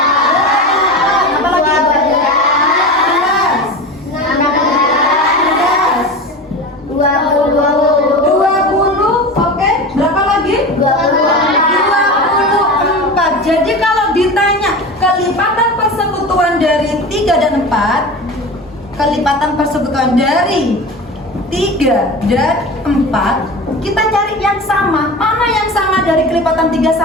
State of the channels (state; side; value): normal; both; correlation 0.29